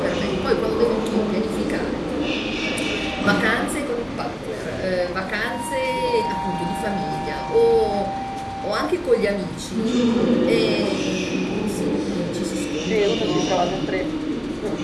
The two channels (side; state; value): both; identical; correlation 1.00